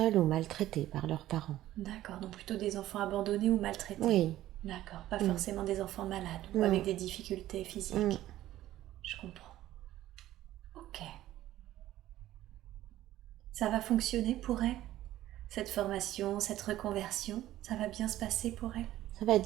ou maltraités par leurs parents. D'accord, donc plutôt des enfants abandonnés ou maltraités. Oui. D'accord, pas forcément des enfants malades ou avec des difficultés physiques. Je comprends. Ok. Ça va fonctionner pour elle? Cette formation, cette reconversion, ça va bien se passer pour elle? Ça va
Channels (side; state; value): left; quieter; 14.3 dB